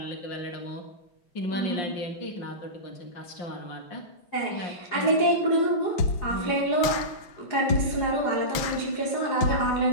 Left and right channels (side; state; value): right; late; 5.9 ms